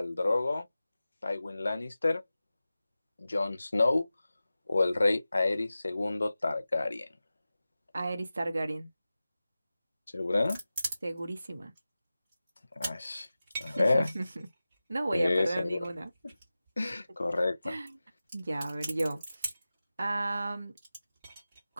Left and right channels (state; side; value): inverted; both; correlation -0.95